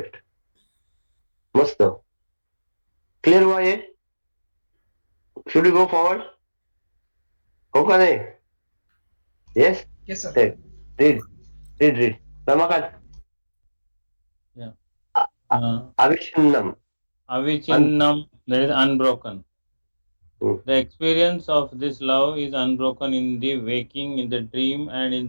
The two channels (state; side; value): inverted; both; correlation -1.00